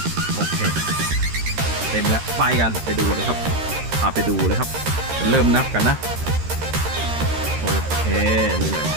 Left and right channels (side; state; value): left; late; 13 ms